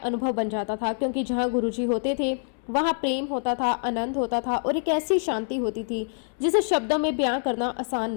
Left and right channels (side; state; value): right; silent; 61 dB below the other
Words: बन जाता था, क्योंकि जहाँ गुरुजी होते थे वहाँ प्रेम होता था, आनंद होता था और एक ऐसी शांति होती थी जिसे शब्दों में बयां करना आसान